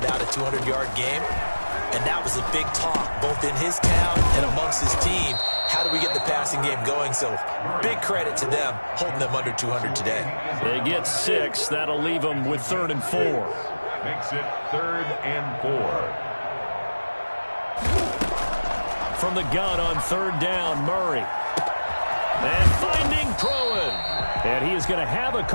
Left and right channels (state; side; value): inverted; both; correlation -1.00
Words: a 200-yard game, and that was a big talk, both in his town and amongst his team. How do we get the passing game going? So big credit to them, holding them under 200 today. They get 6. That'll leave them with 3rd and 4. Makes it 3rd and 4. From the gun on 3rd down, Murray. And finding Pruitt. And he is going to have a